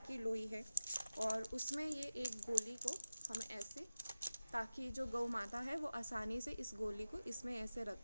लोई है और उसमें ये एक गोली को हम ऐसे, ताकि जो गौ माता है वो आसानी से इस गोली को इसमें ऐसे रख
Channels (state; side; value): inverted; both; correlation -0.96